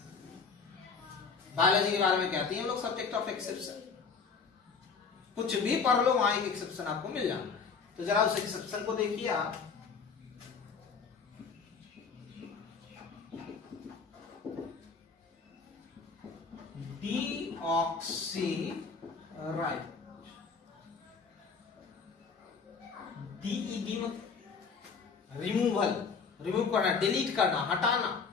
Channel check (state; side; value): quieter; right; 5.3 dB